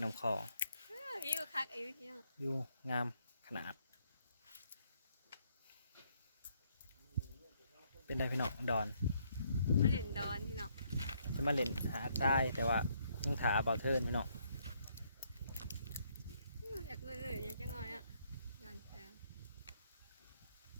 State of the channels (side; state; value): both; inverted; correlation -0.70